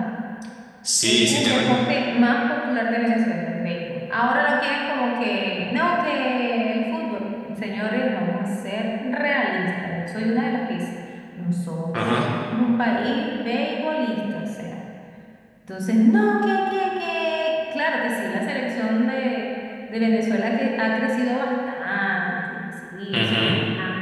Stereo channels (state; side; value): identical; both; correlation 1.00